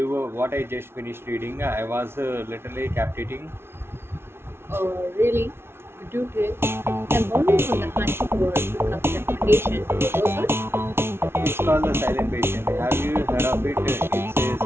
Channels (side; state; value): left; late; 0.12 ms